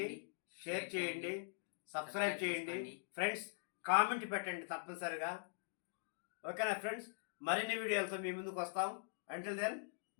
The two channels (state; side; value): silent; right; digital silence